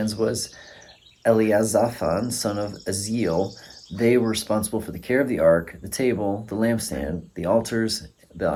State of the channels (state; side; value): identical; both; correlation 1.00